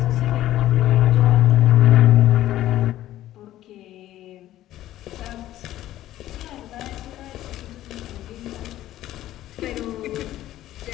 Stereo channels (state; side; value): quieter; right; 13.8 dB